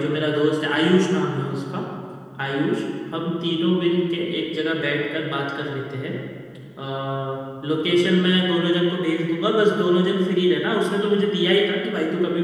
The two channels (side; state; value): both; identical; correlation 1.00